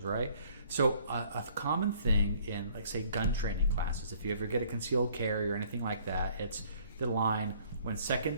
right? So a common thing in, like, say, gun training classes, if you ever get a concealed carry or anything like that, it's the line, when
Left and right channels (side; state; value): both; inverted; correlation -0.59